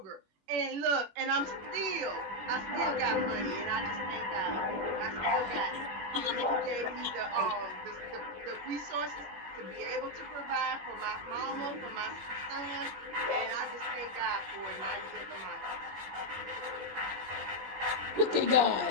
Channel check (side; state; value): left; late; 21 ms